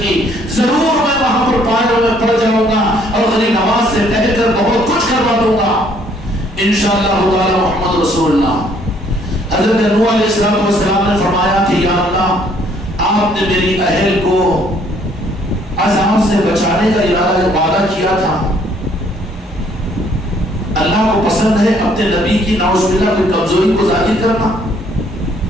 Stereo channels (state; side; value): normal; both; correlation 0.64